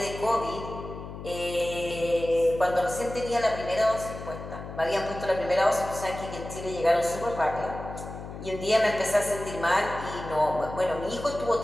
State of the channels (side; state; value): left; noise; hum, 11 dB below the sound